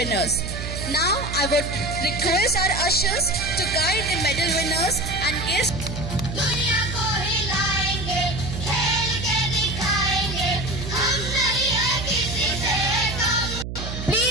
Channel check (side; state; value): right; noise; hum, 6 dB below the sound